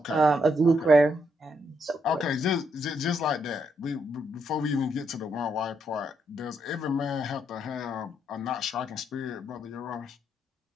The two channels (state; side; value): normal; both; correlation 0.77